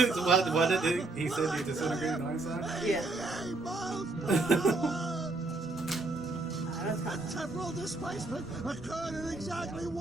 did he said he disintegrated Einstein? yeah. 88 miles per hour. The temporal displacement occurred at exactly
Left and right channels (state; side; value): quieter; left; 3.1 dB